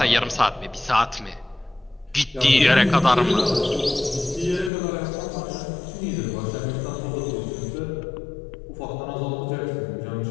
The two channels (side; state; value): right; drops out; at 4.7 s